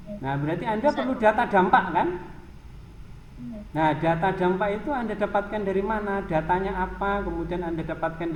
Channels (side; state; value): both; identical; correlation 1.00